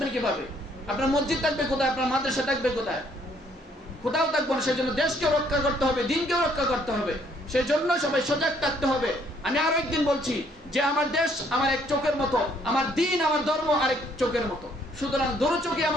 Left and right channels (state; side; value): normal; both; correlation 0.66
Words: কিভাবে? আপনার মসজিদ থাকবে কোথায়? আপনার মাদ্রাসা থাকবে কোথায়? কোথাও থাকবো না। সেজন্য দেশকে রক্ষা করতে হবে, দিনকেও রক্ষা করতে হবে। সেজন্য সবাই সজাগ থাকতে হবে। আমি আরো একদিন বলছি যে আমার দেশ আমার এক চোখের মতো, আমার দিন আমার ধর্ম আরেক চোখের মতো। সুতরাং দুটো চোখে